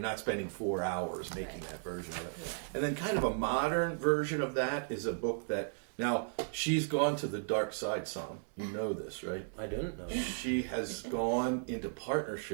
spending 4 hours making Right. that version of it. Yeah. And then kind of a modern version of that is a book that, now, she's gone to the dark side some. You know this, right? I didn't know that. She has gone into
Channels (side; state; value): left; silent; digital silence